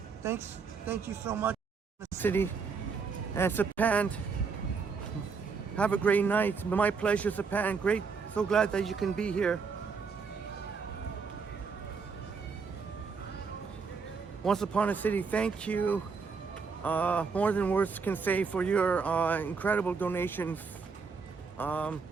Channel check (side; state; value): left; quieter; 5.2 dB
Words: Thank you so much, City and Sapan. Have a great night. My pleasure, Sapan. Great. So glad that you can be here. Once Upon a City, thank you. More than words can say for your incredible donations.